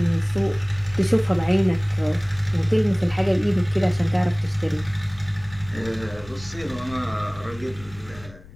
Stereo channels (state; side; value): noise; left; rumble, 19 dB below the sound